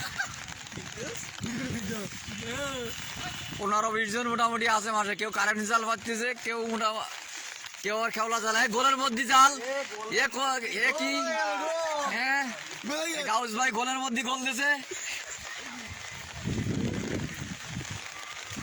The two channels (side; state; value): both; identical; correlation 1.00